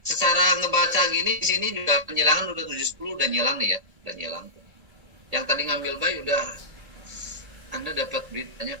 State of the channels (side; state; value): left; late; 1.7 ms